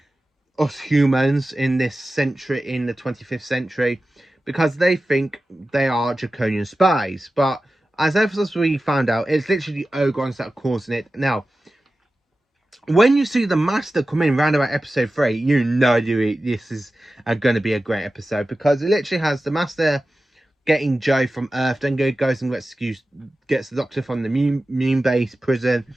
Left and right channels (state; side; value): normal; both; correlation 0.95